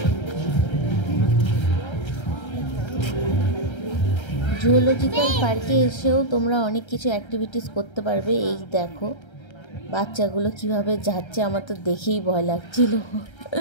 জুওলজিক্যাল পার্কে এসেও তোমরা অনেক কিছু অ্যাক্টিভিটিস করতে পারবে। এই দেখো বাচ্চাগুলো কিভাবে যাচ্ছে, আমার তো দেখেই ভয় লাগছিল।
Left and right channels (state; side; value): late; right; 1.3 ms